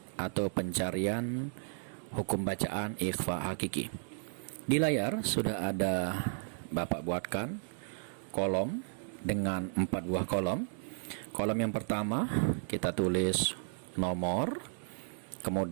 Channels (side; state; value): left; silent; 55 dB below the other